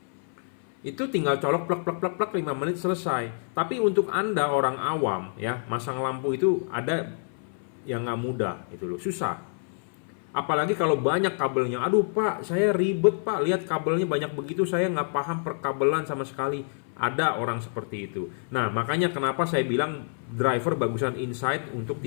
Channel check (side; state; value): right; silent; 58 dB below the other